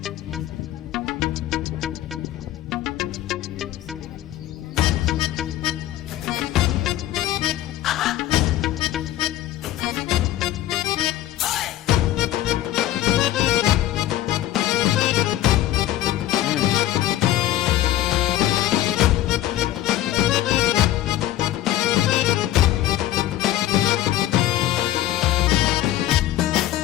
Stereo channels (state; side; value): quieter; right; 13.7 dB